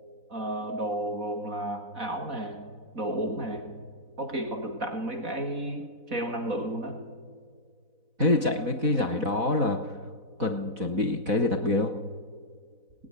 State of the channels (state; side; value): late; left; 4.1 ms